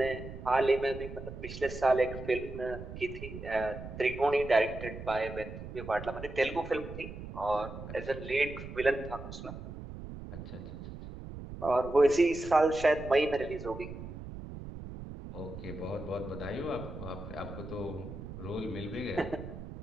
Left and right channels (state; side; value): noise; right; rumble, 10 dB below the sound